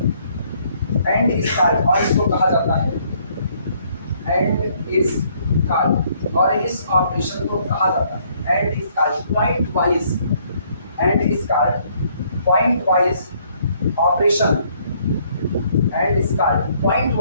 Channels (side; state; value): both; inverted; correlation -0.66